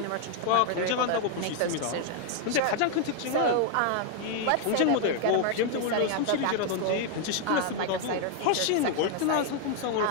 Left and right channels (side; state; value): both; different; correlation 0.00